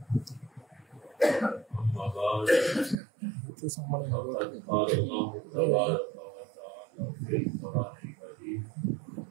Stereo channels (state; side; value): drops out; left; at 3.0 s